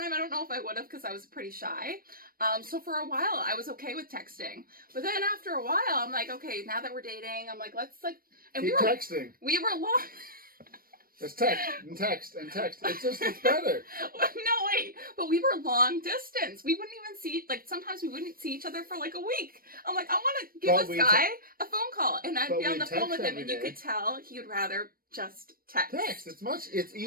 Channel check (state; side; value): late; left; 0.42 ms